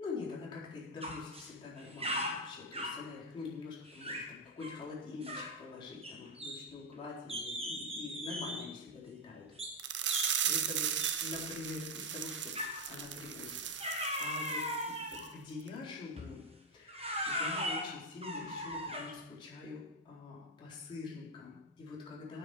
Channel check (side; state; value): both; normal; correlation 0.04